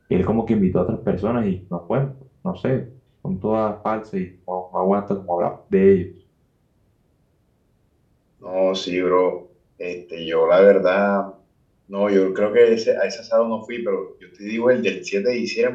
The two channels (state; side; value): identical; both; correlation 1.00